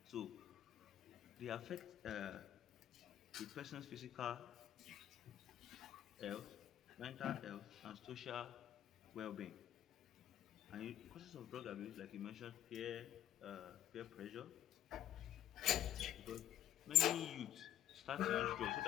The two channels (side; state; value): right; quieter; 11.7 dB